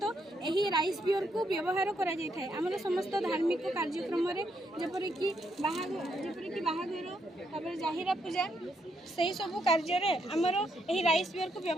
एही राइस बियर को व्यवहार करा जाय थाए हमर समस्त धार्मिक कार्यक्रम रे जेपरि कि बाहागर तापर जाहिरा पूजा सेही सब कार्य रे हमर एही राइस बियर को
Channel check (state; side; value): normal; both; correlation 0.77